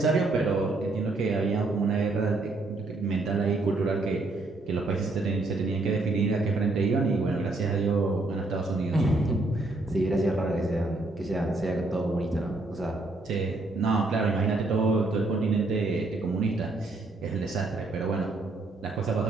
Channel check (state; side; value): quieter; left; 3.1 dB